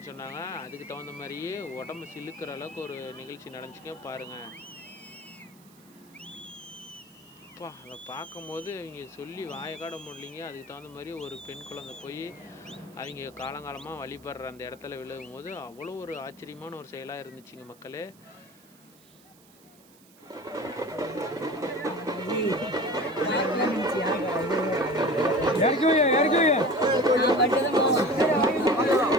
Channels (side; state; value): right; noise; hiss, 27 dB below the sound